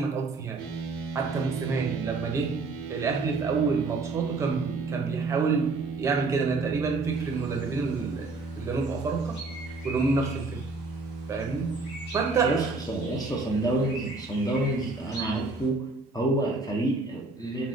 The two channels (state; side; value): quieter; left; 3.6 dB